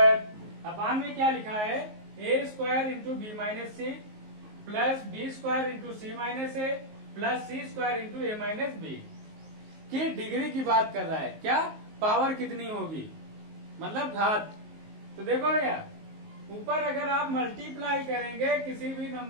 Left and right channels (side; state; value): left; late; 19 ms